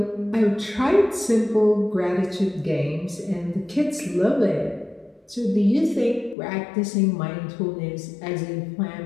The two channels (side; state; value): right; drops out; at 6.4 s